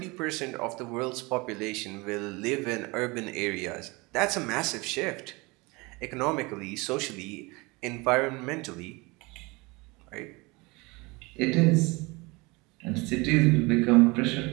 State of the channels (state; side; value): quieter; left; 25.2 dB